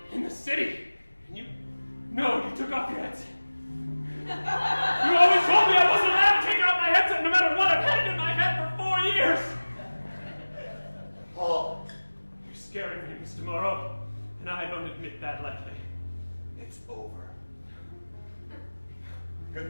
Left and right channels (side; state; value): both; inverted; correlation -1.00